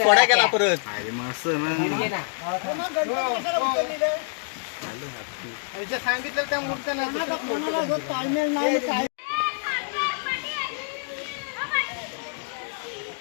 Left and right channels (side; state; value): right; silent; 59 dB below the other